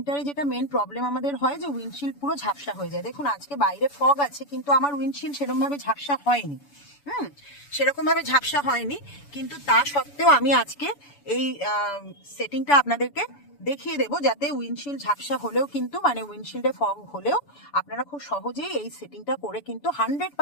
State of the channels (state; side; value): late; right; 7.0 ms